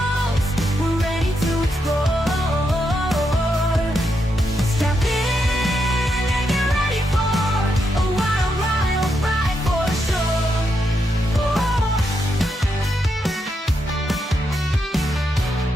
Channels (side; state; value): both; normal; correlation 0.82